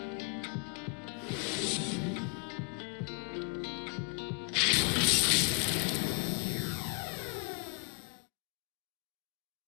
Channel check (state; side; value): quieter; right; 35.3 dB